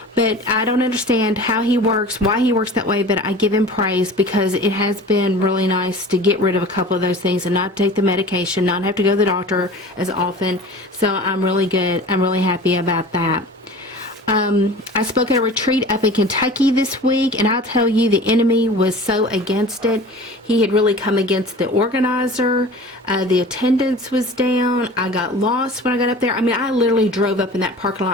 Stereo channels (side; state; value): both; normal; correlation 0.39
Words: I don't understand how he works, why he works that way, but I give him praise because it has been really nice to get rid of a couple of those things and not take the medication, not have to go to the doctor as often. So I'm really good. I'm really happy about that. I spoke at a retreat up in Kentucky this week, and I'll tell you, the enemy was so against it. He had really come against the organizer. The attendance was down. I got lost when I got up there. I mean, I literally drove up in that parking